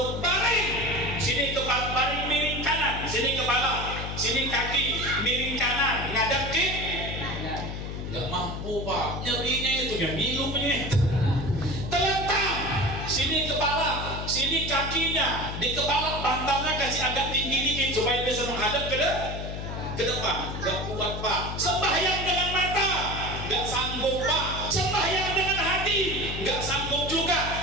baring, sini kepala, baring miring kanan, sini kepala, sini kaki, miring kanan, ngadap ke, nggak mampu Pak, nyerinya itu, yang ngilunya, telentang, sini kepala, sini kakinya, di kepala bantalnya kasih agak tinggi dikit supaya bisa menghadap ke depan. Gak kuat Pak. Sembahyang dengan mata, gak sanggup Pak. Sembahyang dengan hati, gak sanggup juga.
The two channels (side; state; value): left; noise; hum, 6 dB below the sound